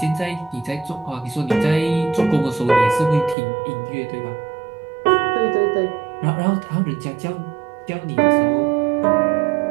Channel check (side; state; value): left; drops out; at 3.4 s